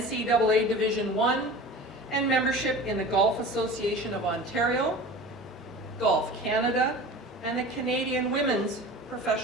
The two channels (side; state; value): both; normal; correlation 0.37